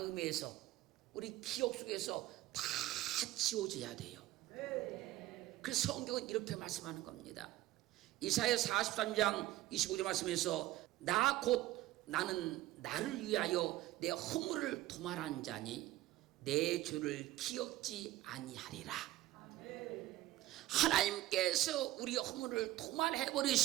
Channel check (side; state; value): left; quieter; 15.8 dB